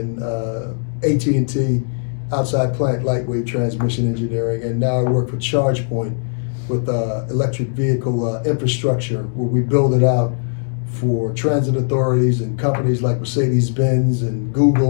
AT&T outside plant lightweight transmission engineering. And now I work for ChargePoint with electric vehicle infrastructure, where we build it out for transit authorities and companies like Mercedes-Benz and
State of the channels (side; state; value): right; silent; digital silence